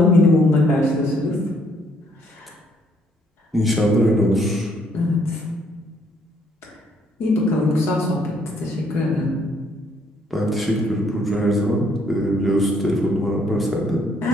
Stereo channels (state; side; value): normal; both; correlation 0.67